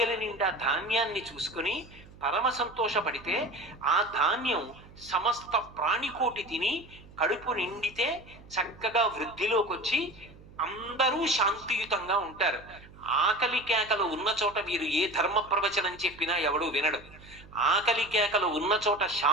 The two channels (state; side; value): noise; right; hum, 21 dB below the sound